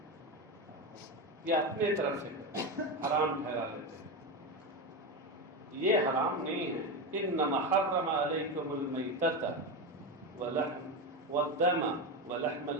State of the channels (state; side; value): normal; both; correlation 0.16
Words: یا اپنے طرف سے حرام ٹھہرا لیتے ہیں۔ یہ حرام نہیں ہے۔ انما حرم علیکم المیتۃ والدم ولحم